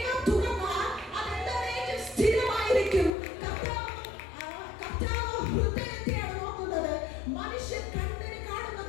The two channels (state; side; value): drops out; right; at 3.1 s